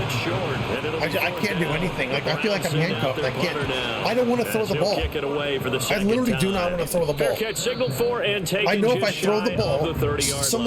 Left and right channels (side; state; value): both; identical; correlation 1.00